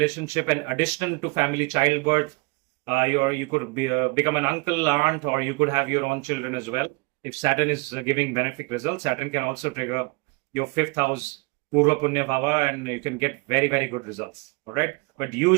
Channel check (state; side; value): quieter; left; 27.7 dB